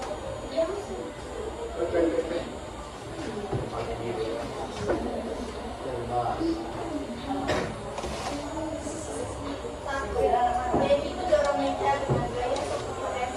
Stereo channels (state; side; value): identical; both; correlation 1.00